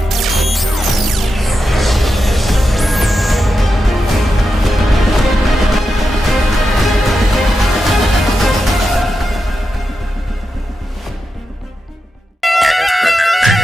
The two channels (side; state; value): both; normal; correlation 0.89